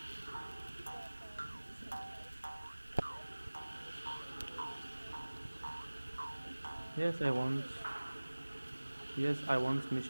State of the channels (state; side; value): inverted; both; correlation -1.00